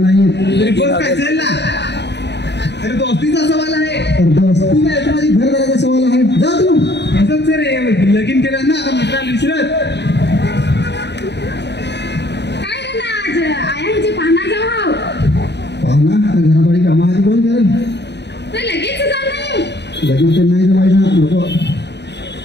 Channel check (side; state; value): right; late; 0.50 ms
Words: येत तरी बोल काय चल ना अरे दोस्तीचा सवाल आहे दोस्ती नाही माझी घरदाराचा सवाल आहे जा तू असंच सर लगीन केलं ना आता मित्राला विसरत काय रे ना आज आयांची पाहणार जाऊ हाव पाहुणा घराबाडी कामा आधी कोण करेल तर लगेच जाऊ नाही लगेच तर नाही जमायचं नको